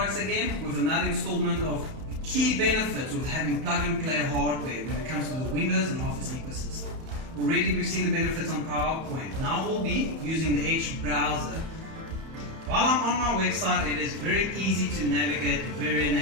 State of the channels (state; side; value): late; left; 31 ms